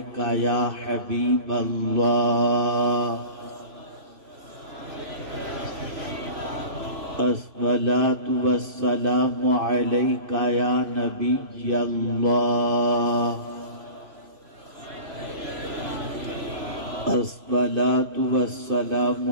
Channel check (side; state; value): left; late; 3.0 ms